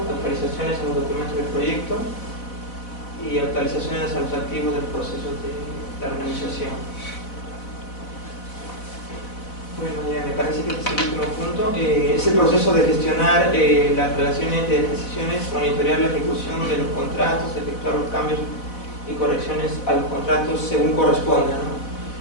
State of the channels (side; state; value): right; late; 4.0 ms